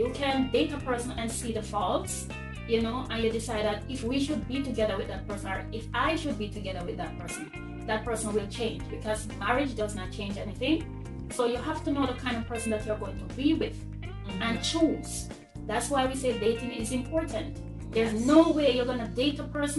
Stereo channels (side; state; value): both; identical; correlation 1.00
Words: can date a person and see the faults, and you decide that if we should be together with that person, or if I should be together with that person will change, because marriage does not change anything. So you have to know the kind of person that you're going to be with and choose. That's why we say dating is important. There's no way you're gonna date a